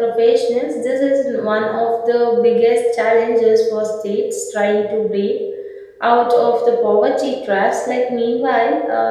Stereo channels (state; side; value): identical; both; correlation 1.00